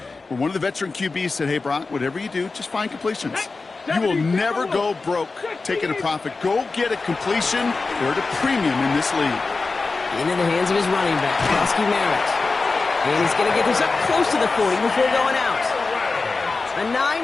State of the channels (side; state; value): right; quieter; 3.9 dB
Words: where one of the veteran QBs said, hey, Brock, whatever you do, just find completions. You will never go broke taking a profit. Go get a completion. They're at a premium in this league. Into the hands of his running back, Koski Merritt. And he's going to get this up close to the 40 before going out. A